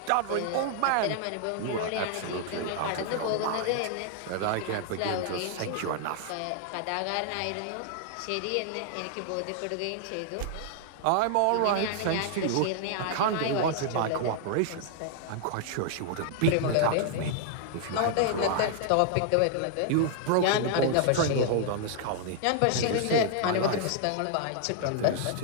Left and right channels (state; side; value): different; both; correlation -0.01